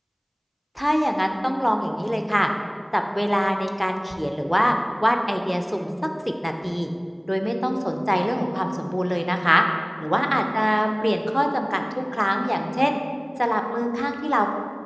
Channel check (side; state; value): both; identical; correlation 1.00